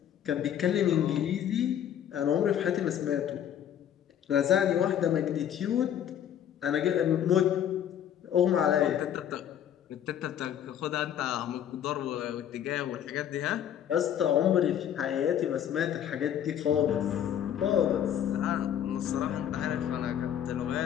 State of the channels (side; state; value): right; quieter; 9.9 dB